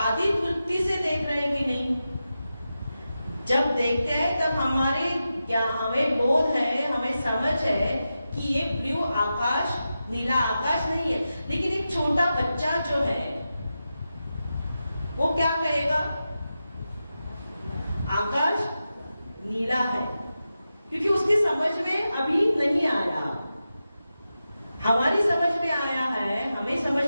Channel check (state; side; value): inverted; both; correlation -0.91